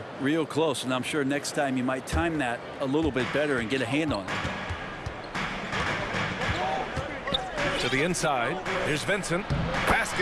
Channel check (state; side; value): identical; both; correlation 1.00